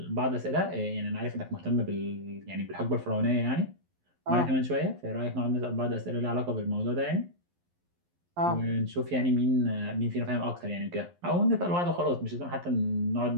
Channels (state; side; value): late; left; 11 ms